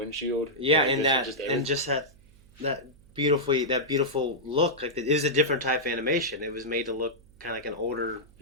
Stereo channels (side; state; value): right; noise; hum, 27 dB below the sound